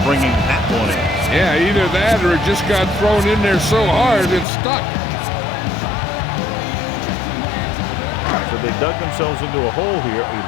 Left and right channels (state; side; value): drops out; right; at 4.5 s